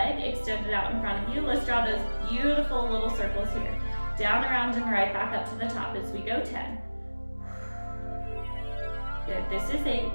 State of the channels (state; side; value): inverted; both; correlation -1.00